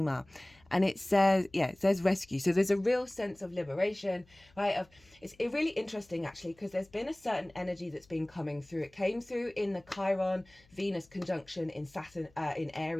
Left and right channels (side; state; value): left; noise; hum, 29 dB below the sound